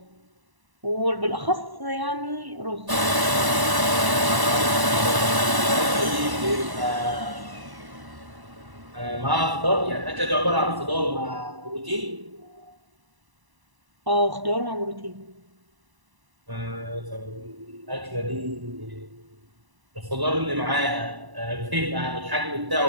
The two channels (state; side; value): late; left; 1.0 ms